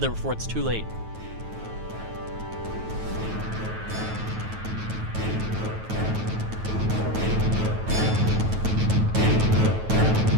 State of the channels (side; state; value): left; late; 9.2 ms